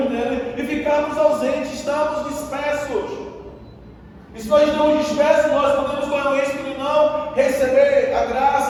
nele, e ficarmos ausentes, estamos dispersos. E se nós estamos dispersos, nós podemos correr o risco de não receber a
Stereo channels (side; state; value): both; identical; correlation 1.00